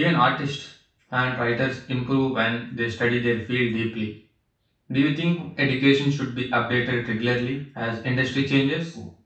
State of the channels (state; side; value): identical; both; correlation 1.00